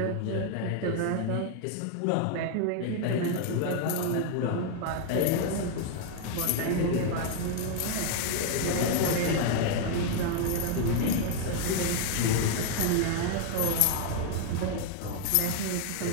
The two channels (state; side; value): different; both; correlation 0.00